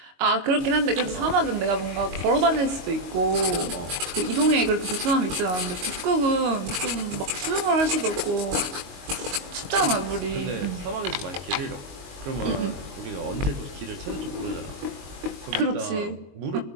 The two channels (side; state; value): left; late; 22 ms